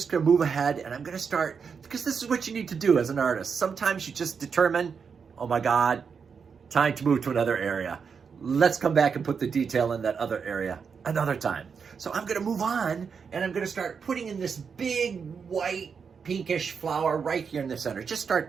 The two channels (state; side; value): quieter; left; 6.1 dB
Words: gonna move ahead and I'm gonna start, because this is what you need to do as an artist. Sometimes you just determine, oh my God, time to move to another area. Let's come back and put the detail in that other area another time. So I'm gonna move on and I'm gonna start putting in this big white pinkish flower right here in the center. Just start